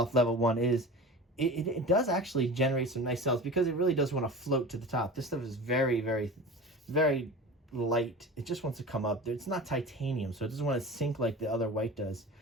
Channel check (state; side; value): normal; both; correlation 0.34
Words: Level 1 is, it does actually generate some nice cells because it really does want to float to the top. This stuff is very, very, very light. It just wants to come up. It's not titanium, so it doesn't want to sink like the other white does.